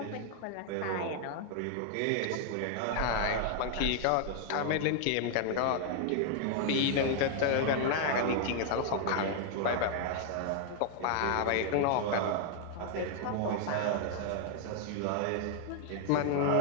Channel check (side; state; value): both; different; correlation 0.00